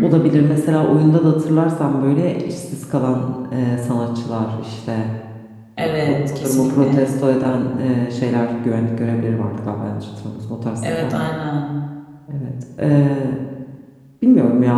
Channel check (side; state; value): both; identical; correlation 1.00